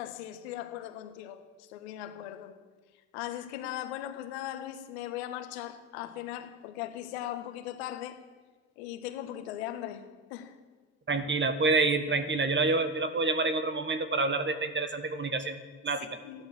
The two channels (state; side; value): normal; both; correlation 0.15